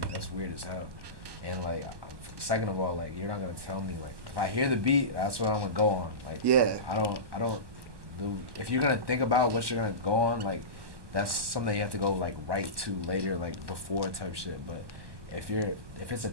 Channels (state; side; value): late; left; 1.2 ms